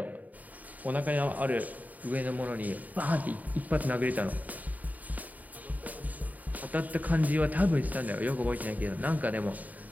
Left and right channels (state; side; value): late; left; 0.076 ms